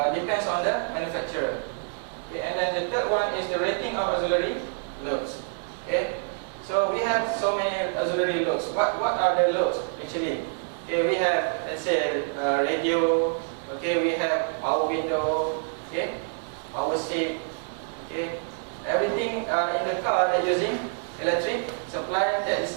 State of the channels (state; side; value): silent; left; digital silence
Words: depends on the manufacturer. Okay, and then the third one is the rating of auxiliary loads. Okay, so we have so many auxiliary loads. What are the loads actually? Okay, we have, let's say, radio. Okay, we have power window. Okay, power seat. Okay, everything in the car that using electric supply, that